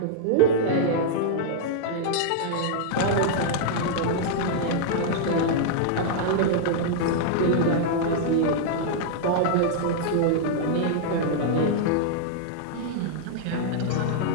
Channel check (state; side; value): different; both; correlation -0.01